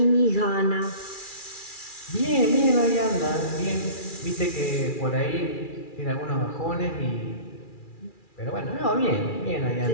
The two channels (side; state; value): right; late; 2.4 ms